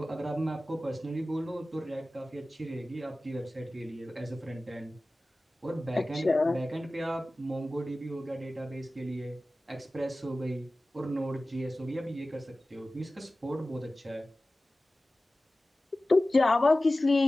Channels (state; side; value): normal; both; correlation 0.96